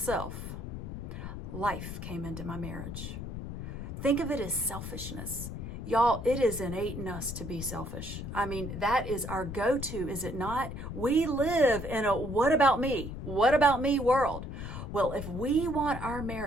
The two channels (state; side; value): noise; left; rumble, 7 dB below the sound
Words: life came into my marriage. Think of it as selfishness. Y'all, it is innate in us to be selfish. I mean, that is our go-to, is it not? We live in a what about me? What about me world? Well, if we want our